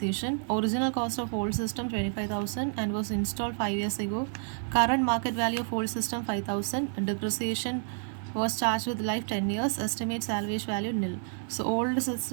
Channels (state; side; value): silent; left; 58 dB below the other